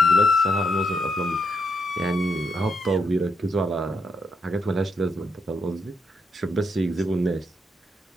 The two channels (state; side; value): normal; both; correlation 0.78